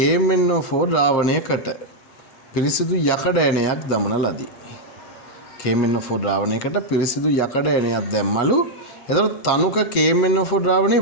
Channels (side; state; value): right; late; 7.5 ms